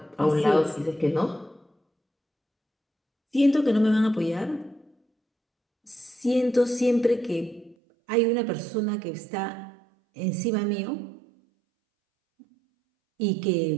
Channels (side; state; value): left; drops out; at 7.8 s